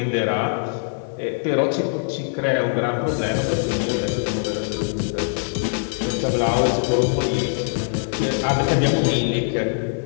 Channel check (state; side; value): silent; right; digital silence